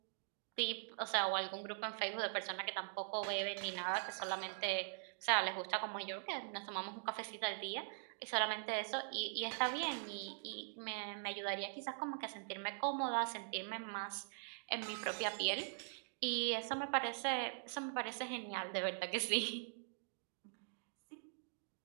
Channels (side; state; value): left; silent; digital silence